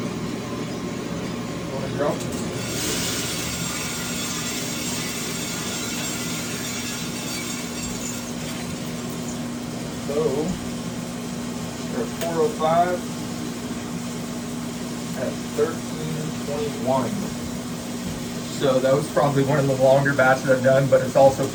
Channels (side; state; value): both; identical; correlation 1.00